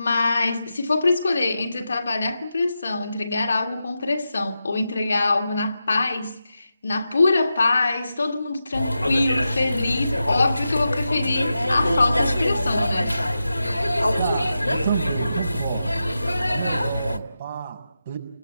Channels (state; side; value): inverted; both; correlation -0.90